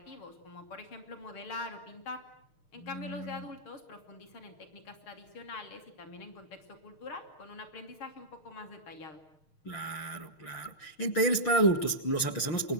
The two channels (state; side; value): late; right; 6.5 ms